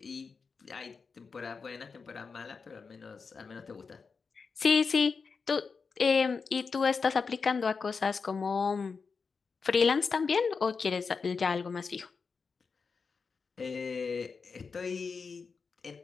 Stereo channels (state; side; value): quieter; right; 5.1 dB